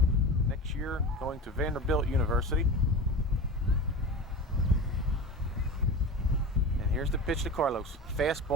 Next year going to Vanderbilt University. And here's the pitch to Carlos.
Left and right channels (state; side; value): normal; both; correlation 0.29